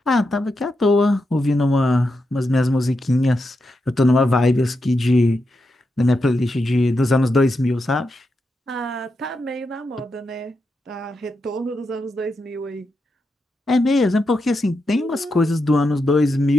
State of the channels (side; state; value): both; normal; correlation 0.86